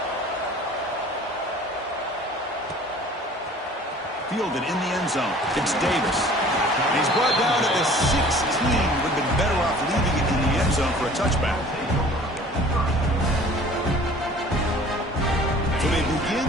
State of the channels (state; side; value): normal; both; correlation 0.49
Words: Fielded in the end zone. It's Davis. And he's brought down at the 16. Would have been better off leaving it in the end zone for a touchback. So they begin